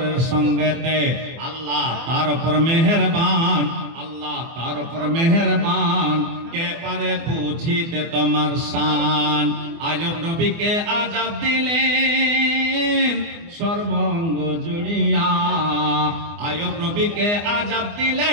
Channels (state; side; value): late; left; 24 ms